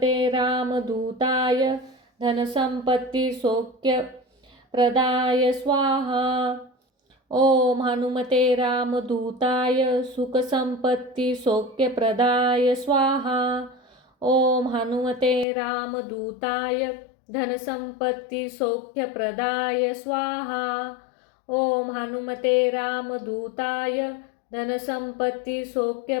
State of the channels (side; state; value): right; drops out; at 15.5 s